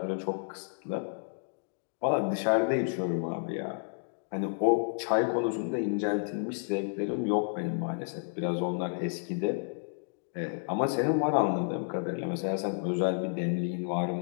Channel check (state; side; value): silent; right; digital silence